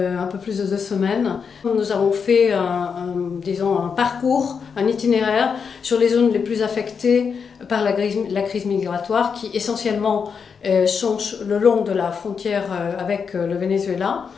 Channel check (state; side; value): quieter; right; 6.1 dB